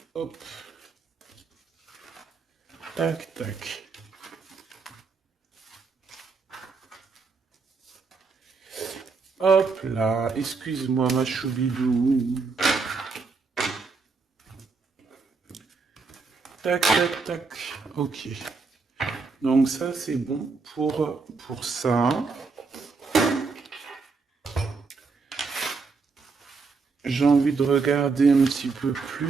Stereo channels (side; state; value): left; quieter; 4.5 dB